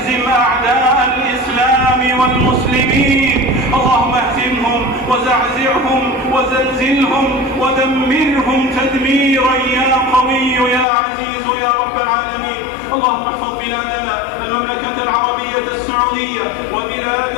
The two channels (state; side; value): drops out; right; at 10.9 s